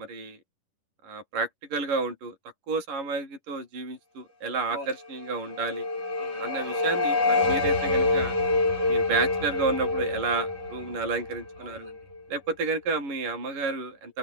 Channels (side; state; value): left; late; 10 ms